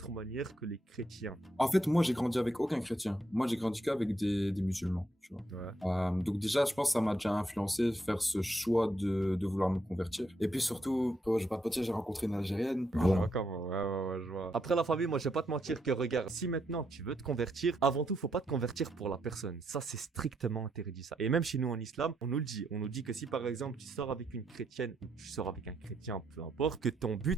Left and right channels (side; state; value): both; normal; correlation 0.78